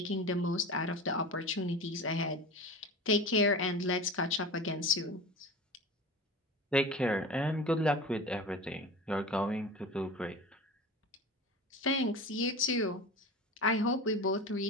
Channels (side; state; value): both; normal; correlation 0.32